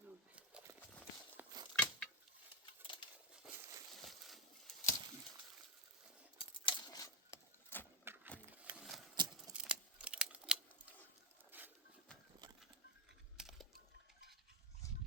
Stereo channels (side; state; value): both; normal; correlation 0.08